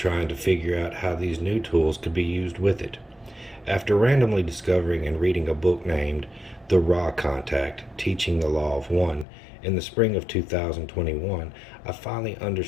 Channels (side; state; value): right; drops out; at 9.2 s